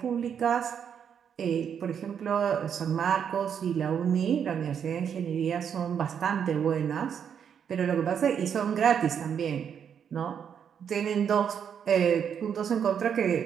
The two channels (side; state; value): left; quieter; 7.9 dB